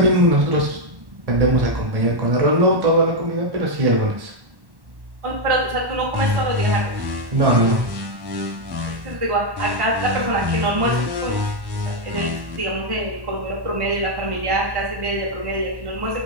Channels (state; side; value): late; left; 1.1 ms